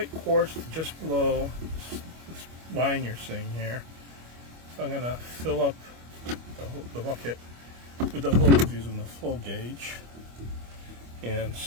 quarts, just below this line you're seeing here. So I'm going to fill up the bucket with the hose using the flow gauge. and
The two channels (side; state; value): left; late; 25 ms